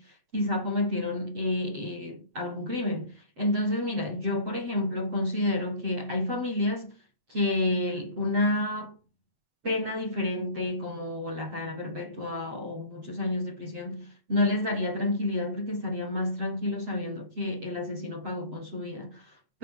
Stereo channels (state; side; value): late; left; 7.7 ms